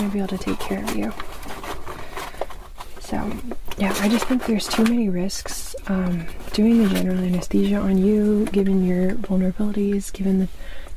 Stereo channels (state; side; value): identical; both; correlation 1.00